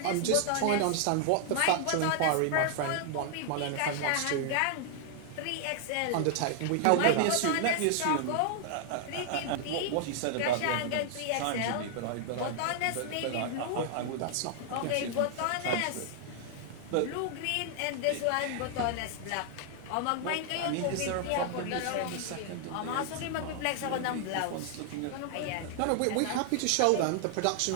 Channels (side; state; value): both; different; correlation 0.00